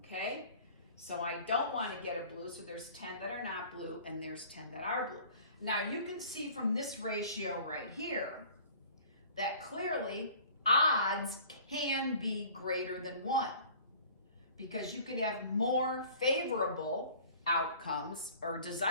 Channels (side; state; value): both; inverted; correlation -0.48